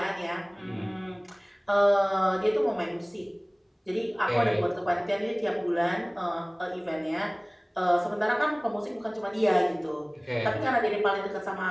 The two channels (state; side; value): identical; both; correlation 1.00